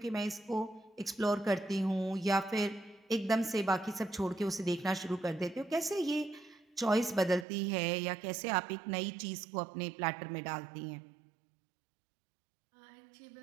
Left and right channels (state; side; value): drops out; left; at 7.5 s